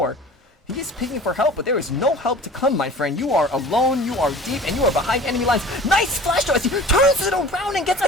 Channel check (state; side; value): normal; both; correlation 0.42